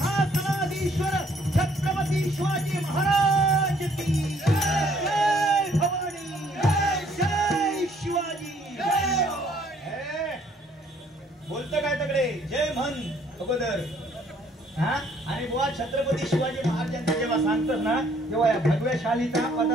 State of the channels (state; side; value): normal; both; correlation 0.63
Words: छत्रपती शिवाजी महाराज की जय. भवानी जय शिवाजी. बोलतं काय तकडे जय म्हण अगोदर. हा आणि बुवा छत्रपती शिवाजी महाराजांचं जेव्हा सांगतात ना तेव्हा या भगव्या शालीचा